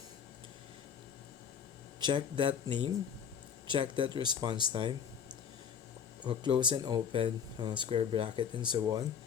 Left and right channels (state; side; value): quieter; right; 7.5 dB